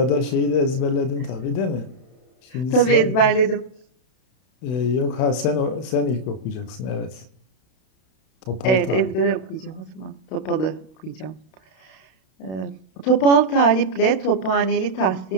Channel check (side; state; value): right; late; 32 ms